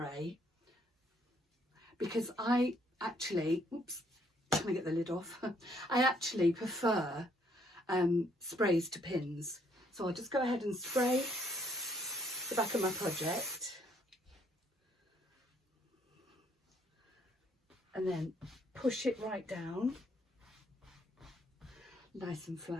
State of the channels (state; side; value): normal; both; correlation 0.67